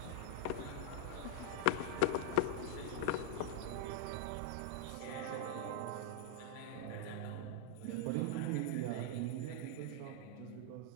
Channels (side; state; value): both; different; correlation 0.00